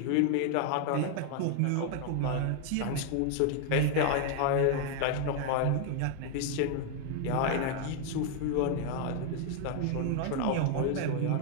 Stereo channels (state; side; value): different; both; correlation 0.00